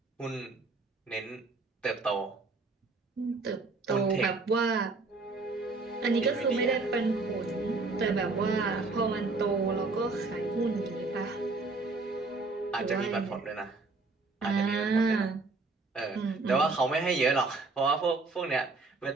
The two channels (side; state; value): left; quieter; 3.7 dB